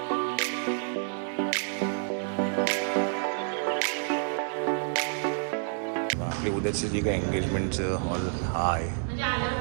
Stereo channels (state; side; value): silent; left; 59 dB below the other